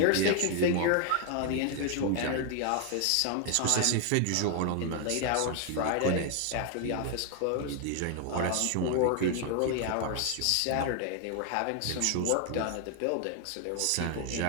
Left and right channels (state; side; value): different; both; correlation 0.00